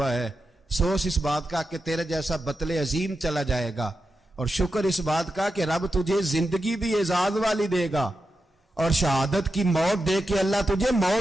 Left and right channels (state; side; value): normal; both; correlation 0.89